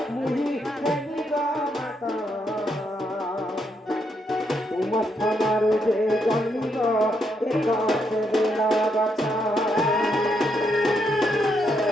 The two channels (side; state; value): both; normal; correlation 0.78